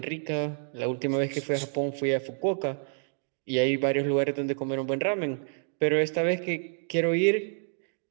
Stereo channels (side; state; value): left; silent; 59 dB below the other